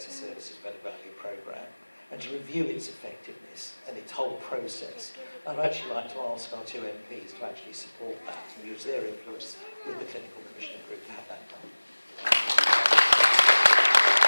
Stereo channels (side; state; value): both; inverted; correlation -1.00